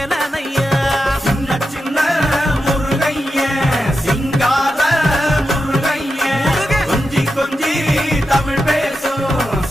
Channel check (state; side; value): normal; both; correlation 0.89